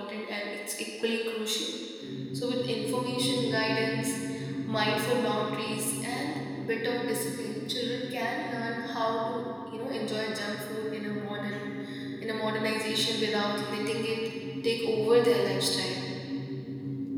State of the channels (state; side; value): identical; both; correlation 1.00